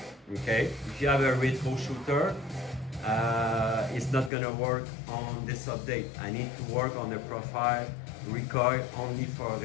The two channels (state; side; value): drops out; right; at 4.3 s